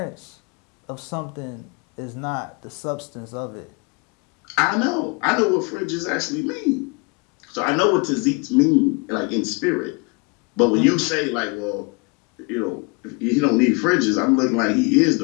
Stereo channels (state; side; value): quieter; right; 29.3 dB